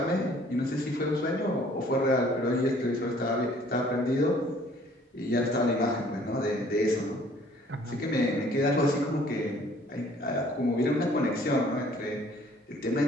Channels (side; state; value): both; normal; correlation 0.57